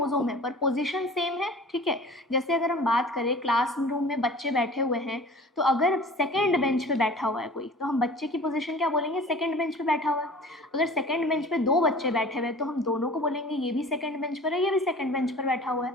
है पर पोजीशन सेम है, ठीक है। जैसे अगर हम बात करें क्लासरूम में बच्चे बैठे हुए हैं, तो अगर सेकंड बेंच पे बैठा हुआ है कोई, तो हम बच्चे की पोजीशन क्या बोलेंगे, सेकंड बेंच पे बैठा हुआ है। अगर सेकंड बेंच पे 2 बच्चे बैठे हुए हैं तो हम दोनों को बोलेंगे ये भी सेकंड बेंच पर है, ये भी सेकंड बेंच पर बैठा हुआ है,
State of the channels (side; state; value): both; normal; correlation 0.43